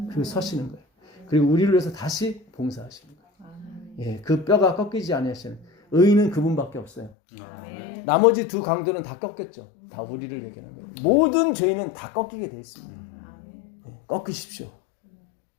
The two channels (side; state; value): right; drops out; at 7.1 s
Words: 그리고 서시는 거예요. 그리고 우리를 위해서 다시 봉사하시는 거예요. 예, 그 뼈가 꺾이지 아니하시는 의인은 그분밖에 없어요. 나머지 두 강도는 다 꺾였죠. 다 우리를 얘기하는 거예요. 모든 죄인은 다 꺾이게 되어 있습니다. 예, 꺾으십시오.